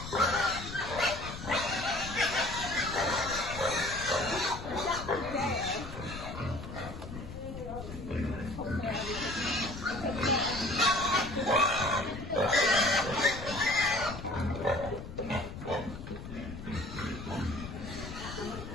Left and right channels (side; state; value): left; noise; rumble, 10 dB below the sound